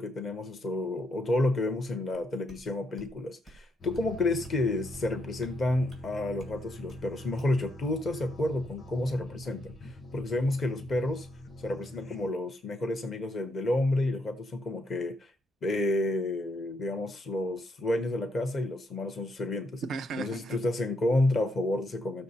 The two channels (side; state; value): both; normal; correlation 0.77